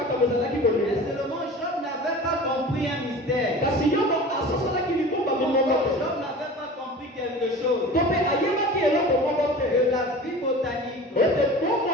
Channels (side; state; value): both; normal; correlation 0.38